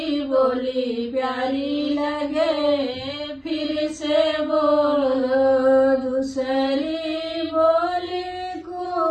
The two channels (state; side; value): identical; both; correlation 1.00